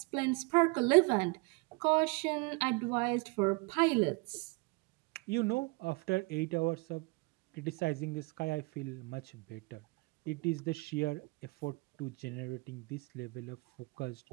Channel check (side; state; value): left; quieter; 27.4 dB